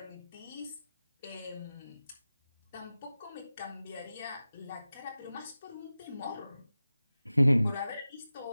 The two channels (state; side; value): inverted; both; correlation -0.95